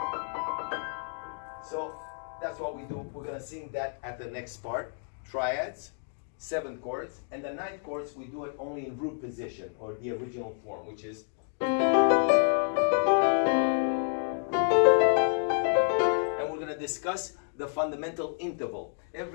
So that's what we do. We're gonna sing that at the next part. Triads, 7 chords, and the 9th chords we do it only in root position, or the original form, which is. And we're gonna discuss the fundamental interval.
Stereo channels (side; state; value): right; silent; 58 dB below the other